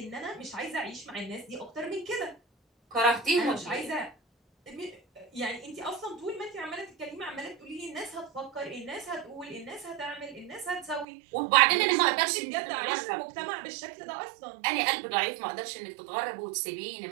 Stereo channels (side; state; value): left; drops out; at 11.1 s